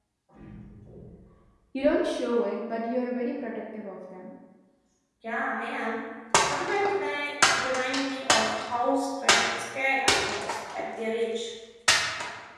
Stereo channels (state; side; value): identical; both; correlation 1.00